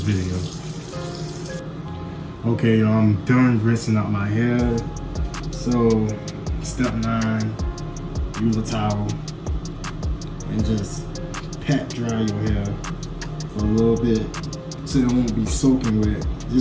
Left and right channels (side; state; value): both; identical; correlation 1.00